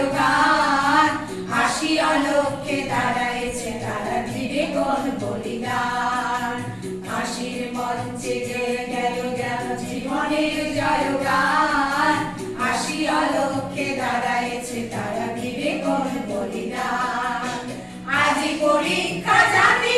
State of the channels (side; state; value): both; identical; correlation 1.00